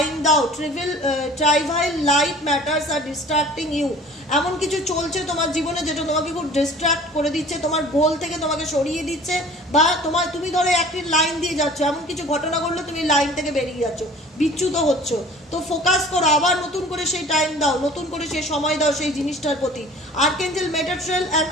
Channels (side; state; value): both; normal; correlation 0.46